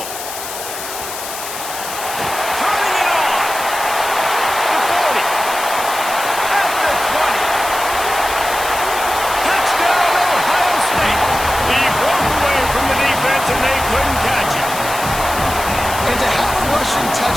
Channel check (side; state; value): left; noise; hiss, 9 dB below the sound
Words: And they couldn't catch it. And to have a rushing